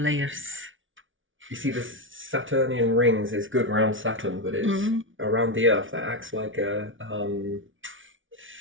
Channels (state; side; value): late; left; 0.57 ms